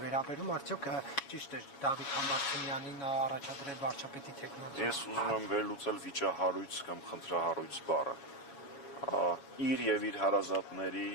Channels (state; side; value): late; right; 7.2 ms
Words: վերաբերում, արդյոք ճիշտ է Դավիթ Համբարձումյանին առաջադրել վարչապետի տեխնացու։ Ես ուզում եմ վերլուծել վիճահարույց կամ խնդրահարույց բառը։ Իր եւ իր հարազատների,